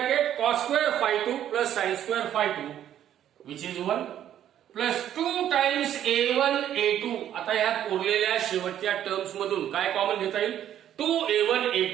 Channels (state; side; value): quieter; left; 10.8 dB